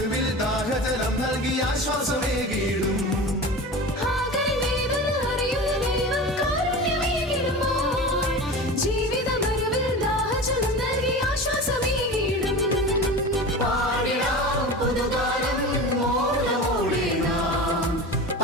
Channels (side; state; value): both; normal; correlation 0.32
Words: ദാഹജലം നൽകി ആശ്വാസമേകിടും